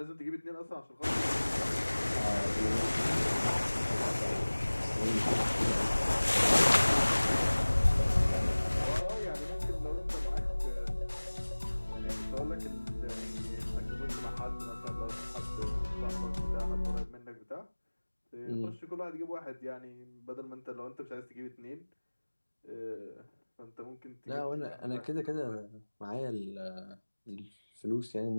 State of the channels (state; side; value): inverted; both; correlation -1.00